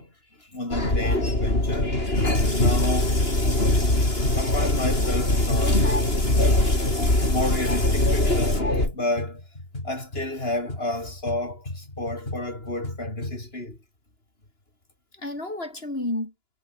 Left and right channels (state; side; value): late; right; 2.9 ms